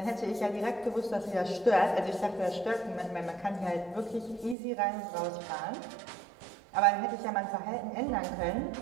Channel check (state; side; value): drops out; left; at 4.5 s